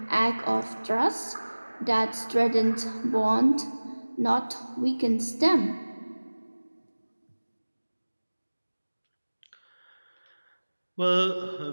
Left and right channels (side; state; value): both; inverted; correlation -1.00